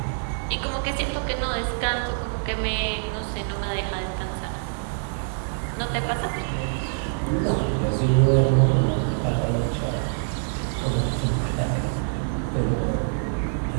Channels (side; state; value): left; silent; 60 dB below the other